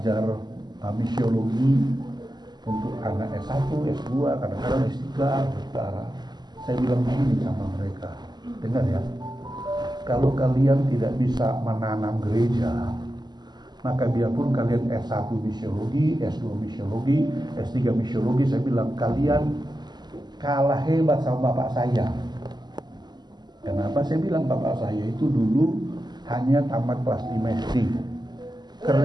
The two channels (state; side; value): late; left; 0.21 ms